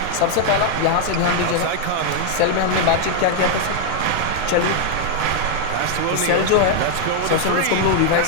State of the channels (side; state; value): both; different; correlation 0.00